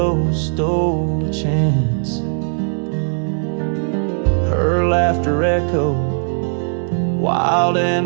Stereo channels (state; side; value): silent; left; digital silence